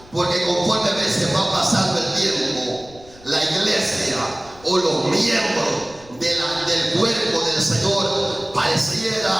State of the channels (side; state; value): left; noise; rumble, 23 dB below the sound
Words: porque conforme a veces va pasando el tiempo, la iglesia o los miembros de la del Señor